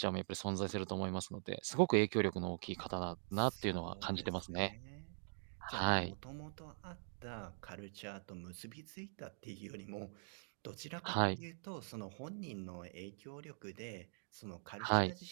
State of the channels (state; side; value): silent; left; digital silence